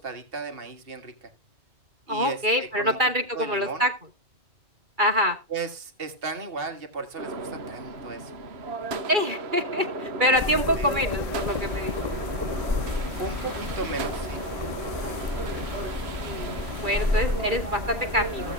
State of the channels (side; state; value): left; late; 2.3 ms